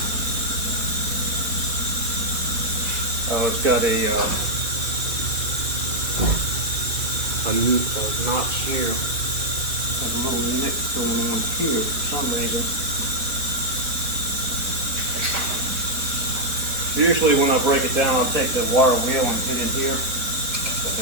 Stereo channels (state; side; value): late; left; 4.6 ms